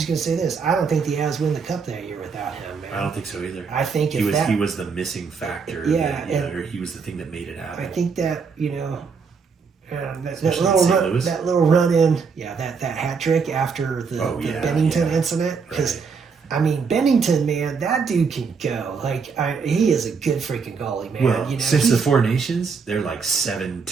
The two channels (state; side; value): quieter; left; 5.4 dB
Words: going to say this, I don't think the Avs win the cup that year without him, man. I don't think so either. I think he was the missing factor, or he was the thing that made it happen. I think that, you know, that little run in, that hat trick after the Bennington incident, because I mean, Bennington, man, that dude can go. Like, he is a good freaking goalie, man. Well, you know, since the Four Nations, they're like